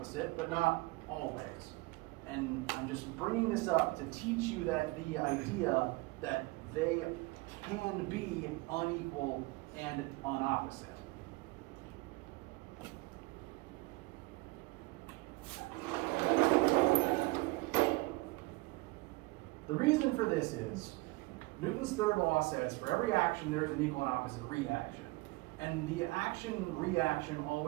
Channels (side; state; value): left; quieter; 23.0 dB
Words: but not always. And I'm just bringing this up to teach you that the idea that they can be unequal and unopposite. The reason for this is Newton's third law says for every action there is an equal and opposite reaction. And the action-reaction